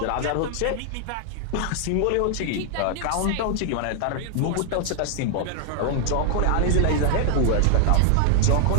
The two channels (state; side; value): different; both; correlation -0.01